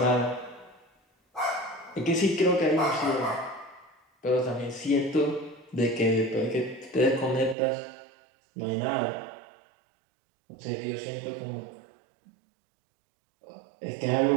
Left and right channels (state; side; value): drops out; left; at 7.6 s